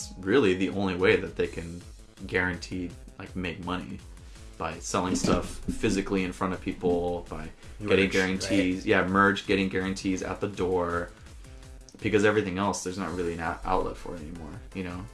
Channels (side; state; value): both; identical; correlation 1.00